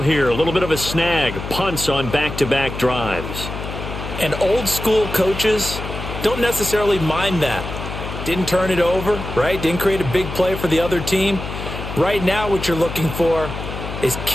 here, a little bit of a snag. Punts on back-to-back drives. And old school coaches don't necessarily mind that. Didn't turn it over, right? Didn't create a big play for the other team. Right now what you're looking for is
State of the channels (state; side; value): noise; left; hum, 8 dB below the sound